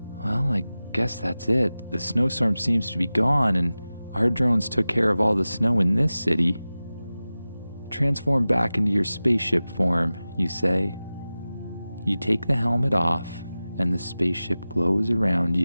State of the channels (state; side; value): inverted; both; correlation -0.96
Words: Well, I guess that's it. The snowstorm seems to be gone, and our drones took care of all the snow in this city. Transform back into your spaceship form, you say. You take the helmet off, and the spaceship glows around